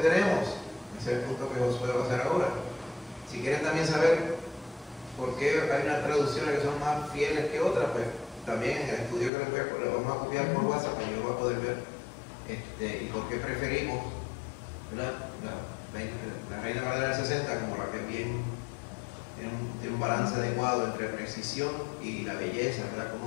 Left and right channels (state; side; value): drops out; right; at 9.3 s